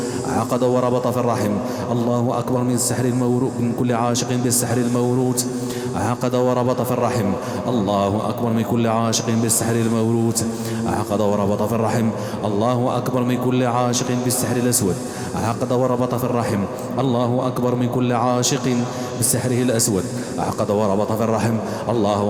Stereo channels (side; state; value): both; identical; correlation 1.00